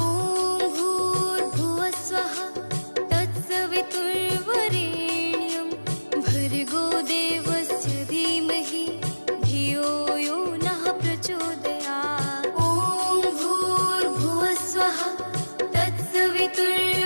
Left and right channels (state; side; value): inverted; both; correlation -1.00